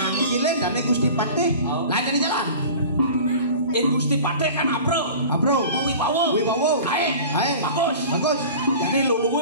dan Gusti Patih lain yang di jalan In Gusti Patih kan apro. Wibawa. Hai. Bagus. Jadi lu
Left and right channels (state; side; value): inverted; both; correlation -0.39